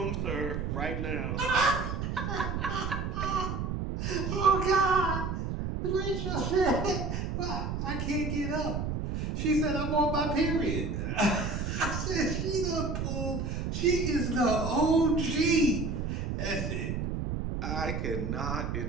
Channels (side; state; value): right; noise; rumble, 2 dB below the sound